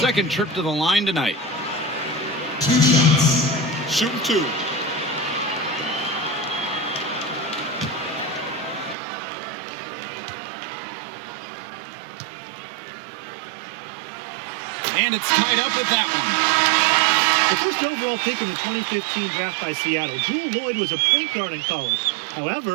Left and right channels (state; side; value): drops out; left; at 9.0 s